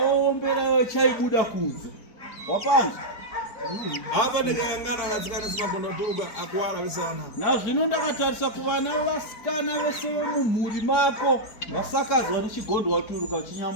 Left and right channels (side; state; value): right; late; 4.4 ms